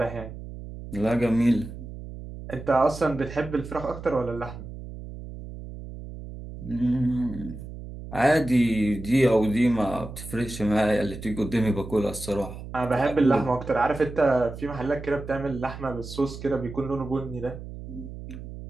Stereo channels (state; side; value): noise; right; hum, 11 dB below the sound